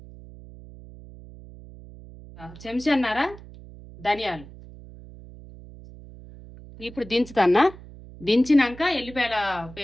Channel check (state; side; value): noise; right; hum, 18 dB below the sound